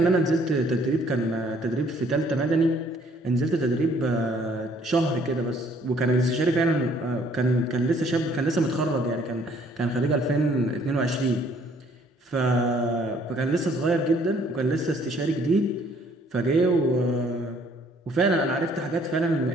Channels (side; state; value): both; normal; correlation 0.61